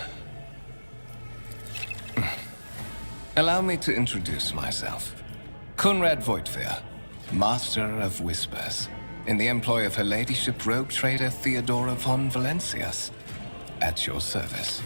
Allow me to introduce myself. Conrad Voigtveer, Master of Whispers, in the employ of Her Ladyship Rogue Trader Theodora von Valencius, at your service.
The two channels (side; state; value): both; inverted; correlation -1.00